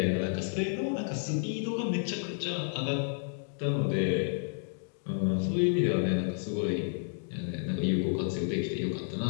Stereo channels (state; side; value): silent; right; digital silence